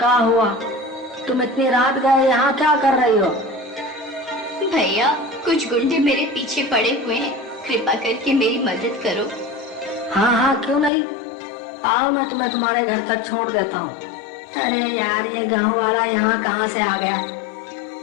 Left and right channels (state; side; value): drops out; right; at 10.9 s